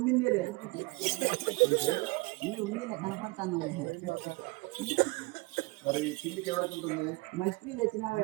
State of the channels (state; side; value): quieter; left; 24.1 dB